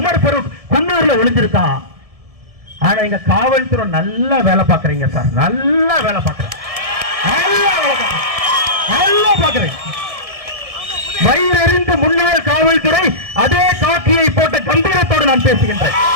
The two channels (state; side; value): late; left; 1.7 ms